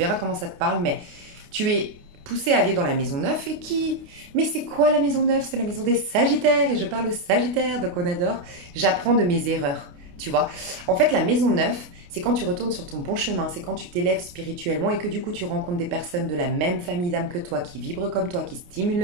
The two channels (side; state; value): left; late; 28 ms